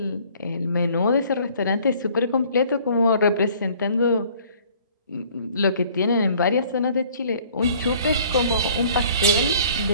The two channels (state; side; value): inverted; both; correlation -0.55